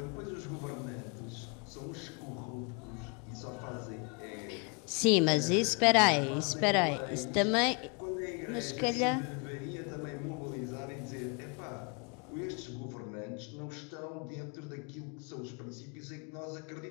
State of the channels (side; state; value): right; quieter; 33.9 dB